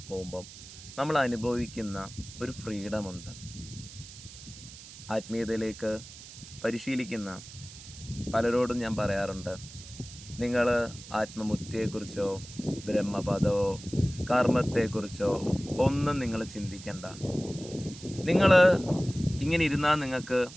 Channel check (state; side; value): noise; right; hiss, 16 dB below the sound